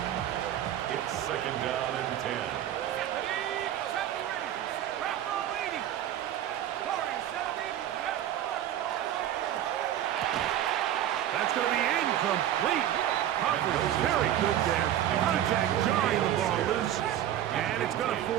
It's 2nd down and 10. That's going to be incomplete. Coverage very good there. Contact jarring the ball loose. And it's going to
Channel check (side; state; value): left; quieter; 11.6 dB